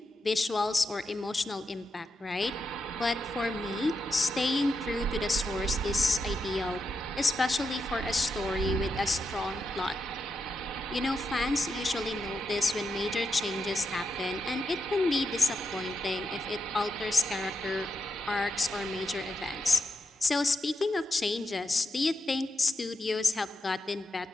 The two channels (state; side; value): normal; both; correlation 0.86